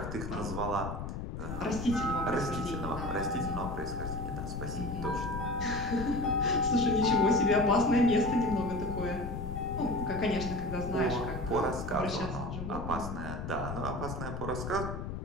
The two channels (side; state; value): left; noise; rumble, 6 dB below the sound